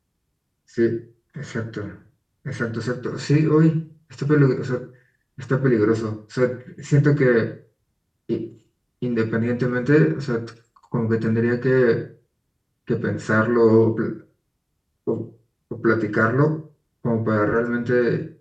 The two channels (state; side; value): identical; both; correlation 1.00